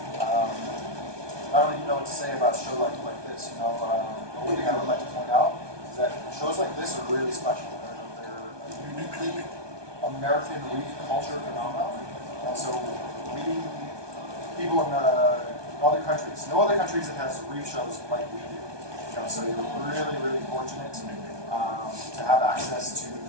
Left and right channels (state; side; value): late; left; 1.2 ms